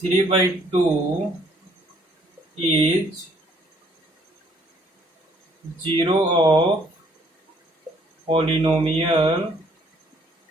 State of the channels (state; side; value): normal; both; correlation 0.63